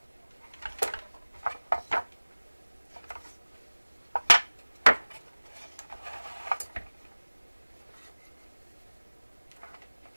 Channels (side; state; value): both; inverted; correlation -1.00